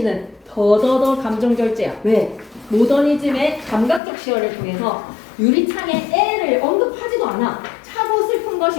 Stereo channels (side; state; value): right; drops out; at 4.0 s